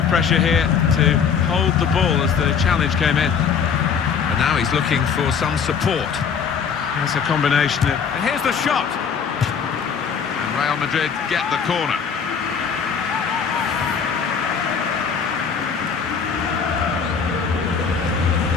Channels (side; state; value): right; quieter; 6.6 dB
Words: pressure here to hold the ball as the challenge came in. And now he's looking for some support. That's a combination of... And here's the shot! And Real Madrid get the corner.